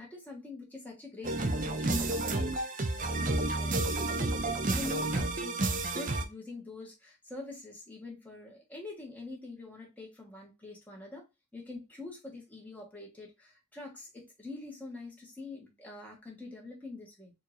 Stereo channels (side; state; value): both; normal; correlation 0.46